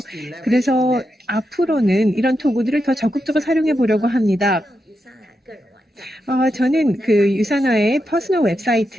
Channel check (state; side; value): normal; both; correlation 0.86